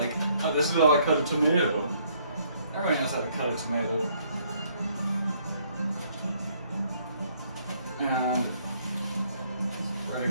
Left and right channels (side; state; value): both; inverted; correlation -0.66